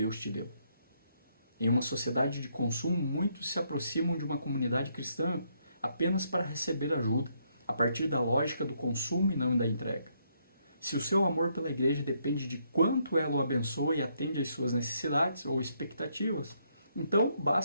te deu. Em uma sociedade de consumo, muitos se aproximam de uma comunidade cristã apenas para receber ajuda, a partir da lógica do consumo e não da entrega. Se o seu amor pela igreja depende de quanto ela o abençoa e atende às suas necessidades ou expectativas, então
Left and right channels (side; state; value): both; inverted; correlation -0.74